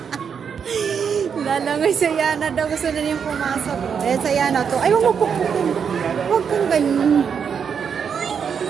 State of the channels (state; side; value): quieter; left; 6.9 dB